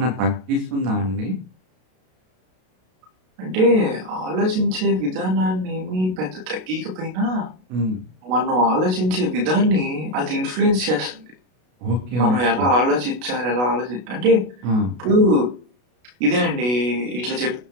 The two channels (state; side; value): late; left; 32 ms